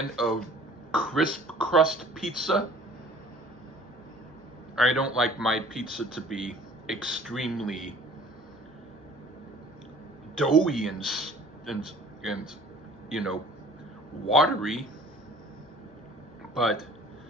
of crisp crust pizza. I don't like my pizza to be extremely doughy and you know, watery, but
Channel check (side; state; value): both; normal; correlation 0.50